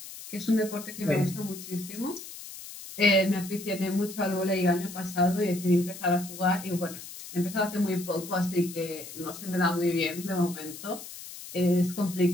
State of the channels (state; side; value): noise; left; hiss, 13 dB below the sound